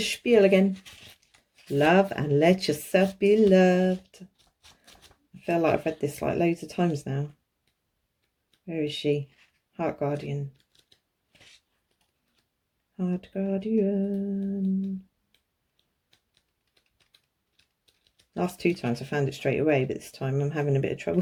again. Love and let yourself be loved. I feel like I've read this like loads of times now. Where is she? Heart Guardian. Heart Guardian. Last two times I found it straight away, but this time I'm having a bit of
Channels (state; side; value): identical; both; correlation 1.00